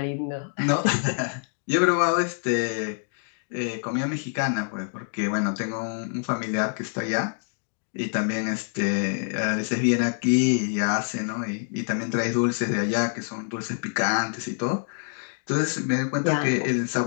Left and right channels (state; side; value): silent; right; digital silence